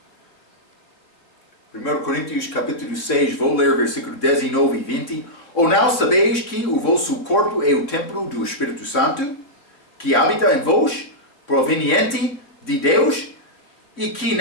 1 Coríntios capítulo 6, vou ler versículo 19 e 20. Ou não sabeis que o vosso corpo é o templo do Espírito Santo, que habita em vós, proveniente de Deus, e que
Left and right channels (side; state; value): right; late; 3.6 ms